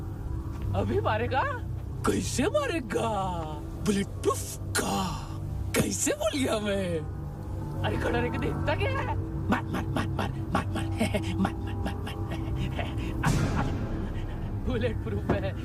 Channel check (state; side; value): identical; both; correlation 1.00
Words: अभी मारेगा? कैसे मारेगा? बुलेट प्रूफ का। कैसे बोल गया मैं? अरे खड़ा रह के देखता क्या है? मार बुलेट प्रूफ है,